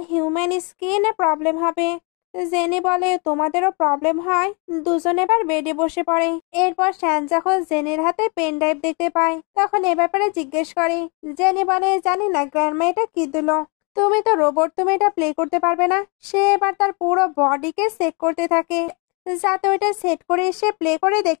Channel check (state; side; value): quieter; right; 33.5 dB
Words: হিউম্যান স্কিনে প্রবলেম হবে। জেনি বলে তোমাদেরও প্রবলেম হয়। দুজন এবার বেডে বসে পড়ে। এরপর শ্যান যখন জেনির হাতে পেন ড্রাইভ দেখতে পায় তখন এ ব্যাপারে জিজ্ঞেস করে। জেনি বলে জানি না গ্র্যান্ডমা এটা কি দিল, তুমি তো রোবট, তুমি এটা প্লে করতে পারবে না। সে এবার তার পুরো বডিকে চেক করতে থাকে যাতে ওইটা সেট করে সে প্লে করে